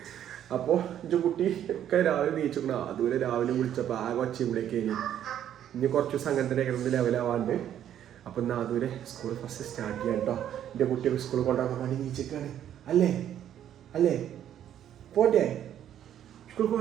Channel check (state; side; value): quieter; left; 10.5 dB